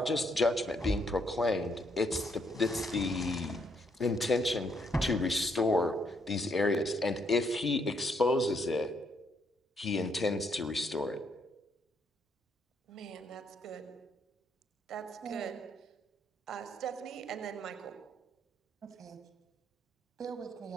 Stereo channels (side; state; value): both; normal; correlation 0.73